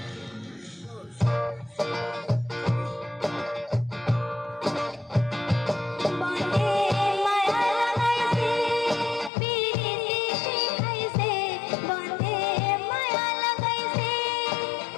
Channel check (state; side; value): drops out; right; at 9.3 s